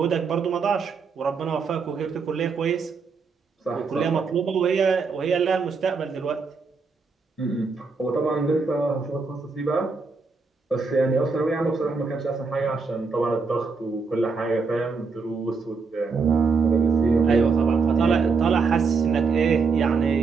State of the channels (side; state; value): left; quieter; 4.8 dB